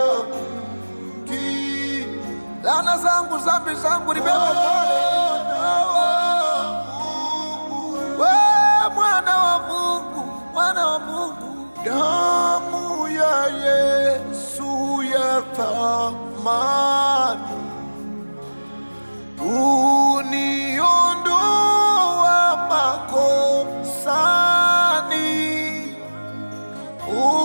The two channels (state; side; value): inverted; both; correlation -1.00